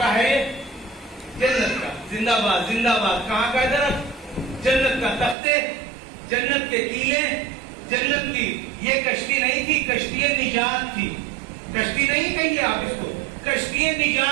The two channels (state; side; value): drops out; left; at 5.4 s